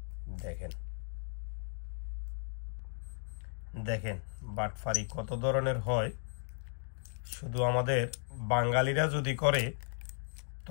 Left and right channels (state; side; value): silent; right; digital silence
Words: দেখেন দেখেন বাটফারি কত ধরনের হয়। শুধু আমাদের বাঙালিরা যদি করে